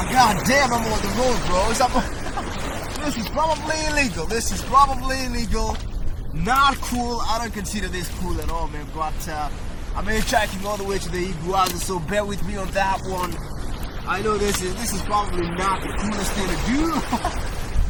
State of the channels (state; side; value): identical; both; correlation 1.00